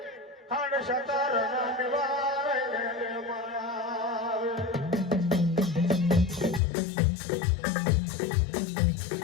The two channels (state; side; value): drops out; right; at 6.6 s